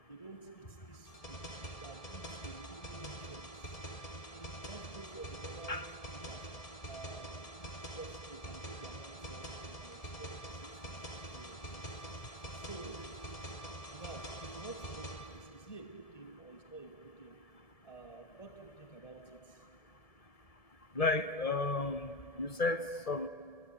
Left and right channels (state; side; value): late; right; 1.7 ms